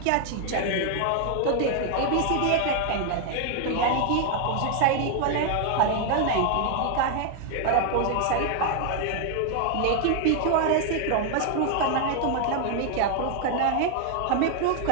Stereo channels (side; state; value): both; different; correlation 0.00